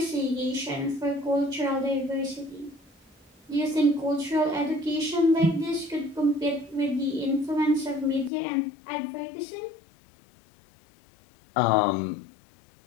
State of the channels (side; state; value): right; drops out; at 8.3 s